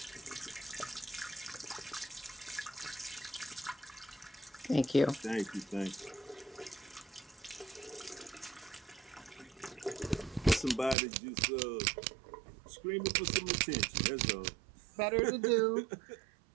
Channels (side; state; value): left; drops out; at 11.0 s